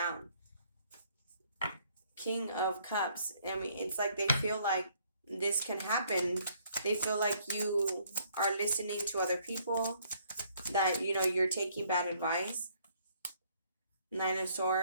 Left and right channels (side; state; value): both; inverted; correlation -0.65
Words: King of Cups. I mean, it's like they feel like this can happen. They feel like you are listening to other people, that, you're taking bad advice. Nine of